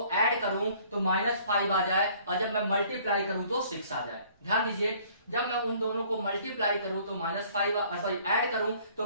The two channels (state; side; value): inverted; both; correlation -0.57